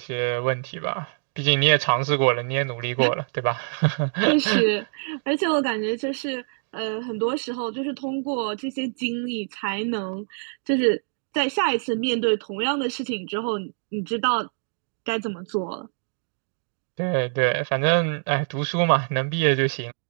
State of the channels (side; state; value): left; silent; digital silence